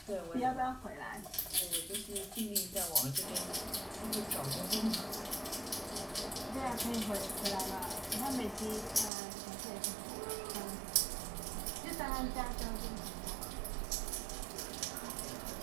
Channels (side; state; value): left; drops out; at 9.1 s